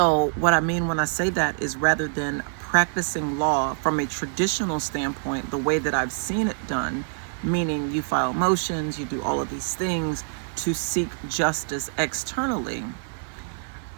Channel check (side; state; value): left; silent; digital silence